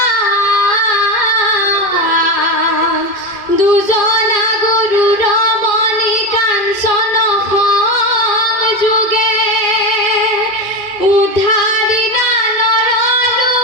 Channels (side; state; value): right; late; 2.7 ms